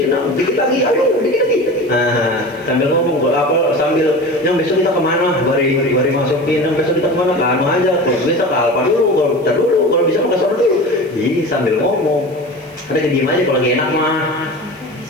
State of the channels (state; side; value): noise; right; hiss, 29 dB below the sound